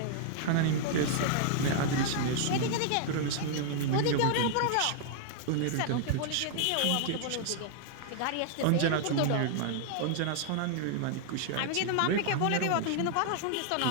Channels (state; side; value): different; both; correlation 0.00